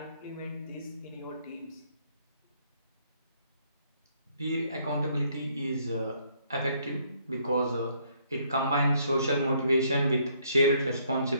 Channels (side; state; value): both; inverted; correlation -0.67